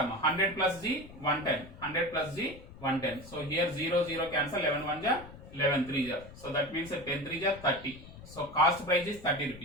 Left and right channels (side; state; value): left; noise; rumble, 17 dB below the sound